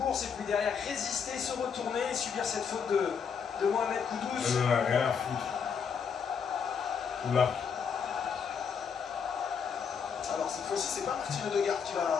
et puis derrière résister, se retourner et subir cette faute de Mohamed Kudus. On en a rien à foutre. Oula. Alors cette fois-ci, c'est pas Martin Odegaard qui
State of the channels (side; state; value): right; quieter; 6.6 dB